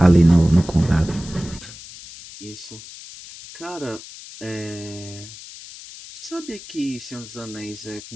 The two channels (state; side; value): noise; left; hiss, 15 dB below the sound